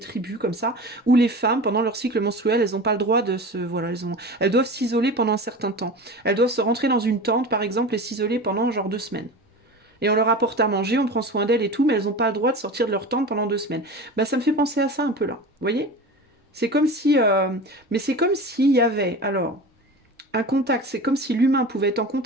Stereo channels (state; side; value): normal; both; correlation 0.33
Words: comme ça, où les femmes, pendant leur cycle menstruel, elles n'ont pas le droit de se... Voilà, elles doivent s'isoler pendant un certain temps. Elles doivent se rentrer dans une tente, par exemple, et s'isoler pendant genre 2 semaines. Et on leur apporte à manger, on prend soin d'elles et tout, mais elles n'ont pas le droit de sortir de leur tente pendant 2 semaines. Bah, ça me fait penser à ça un peu là, vous voyez? C'est comme si... Mais c'est comme s'il y avait, alors, un contact, c'est comme si l'humain pouvait être en